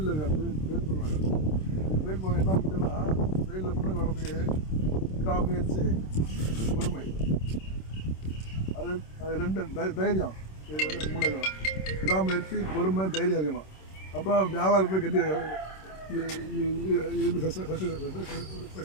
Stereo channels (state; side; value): late; right; 26 ms